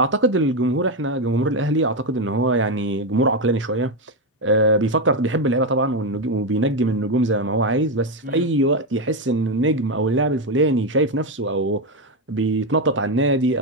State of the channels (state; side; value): normal; both; correlation 0.08